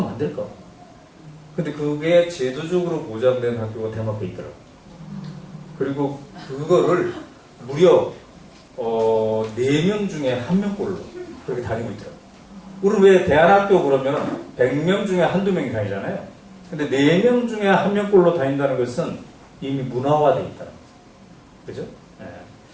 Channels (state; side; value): identical; both; correlation 1.00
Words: 안 될까? 근데 그게 제도적으로 보장된 학교가 덴마크에 있더라고요. 그리고 그거를 무려 4명 중에 1명꼴로 그렇게 다니고 있더라고요. 우리는 왜 대안학교 그러면 100명 중에 한두 명이 다니잖아요. 근데 4명 중에 1명꼴로 다닌다는 것은 이미 문화화되어 있다는 거죠. 그죠?